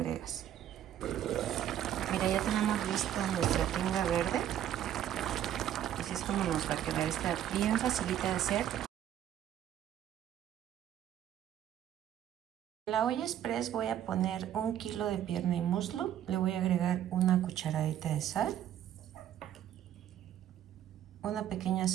Mira, ya tenemos lista nuestra tinga verde. Así es como nos va a quedar. Está bien facilita de hacer. En la olla express voy a poner 1 kilo de pierna y muslo. Le voy a agregar una cucharadita de sal, una pequeña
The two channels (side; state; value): left; quieter; 11.0 dB